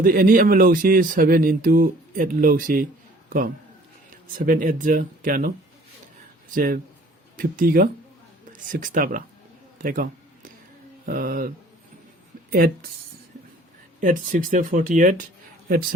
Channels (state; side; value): normal; both; correlation 0.53